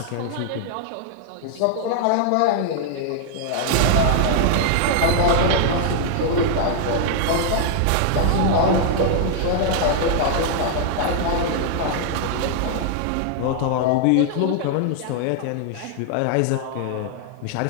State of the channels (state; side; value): different; both; correlation 0.00